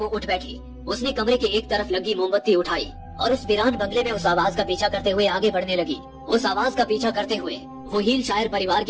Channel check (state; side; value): identical; both; correlation 1.00